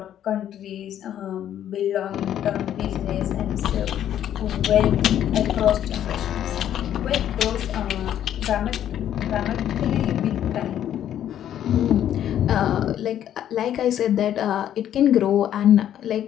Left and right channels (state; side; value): quieter; right; 10.8 dB